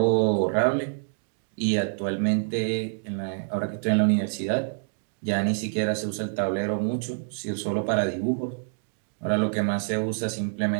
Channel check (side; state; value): left; silent; digital silence